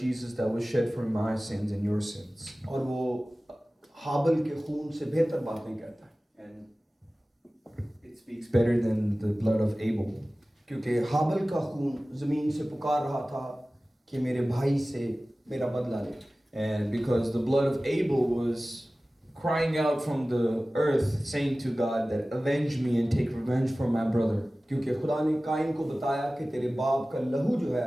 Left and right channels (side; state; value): both; normal; correlation 0.97